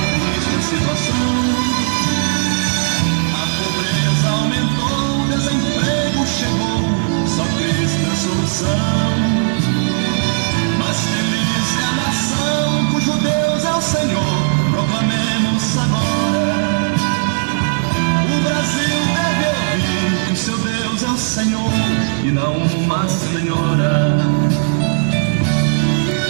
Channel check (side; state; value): left; silent; 68 dB below the other